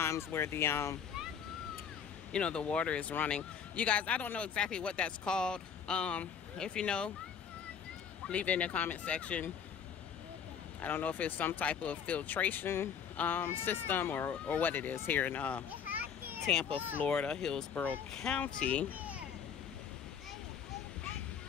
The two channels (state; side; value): quieter; right; 7.5 dB